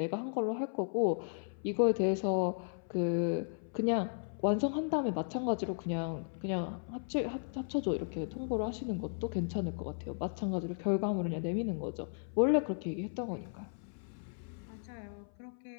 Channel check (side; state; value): right; silent; 54 dB below the other